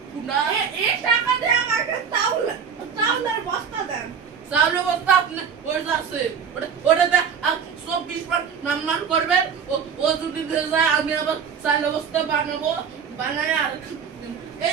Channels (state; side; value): quieter; left; 6.9 dB